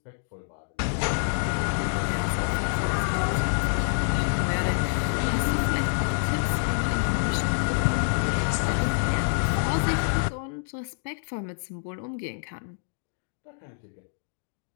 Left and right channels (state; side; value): silent; right; digital silence